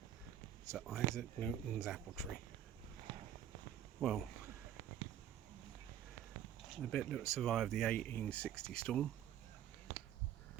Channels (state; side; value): quieter; left; 10.8 dB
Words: It's Isaac Newton's apple tree. Well, the bit that survived the 1860 storm,